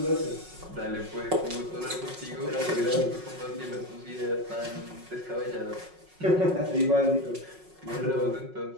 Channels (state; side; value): late; left; 5.4 ms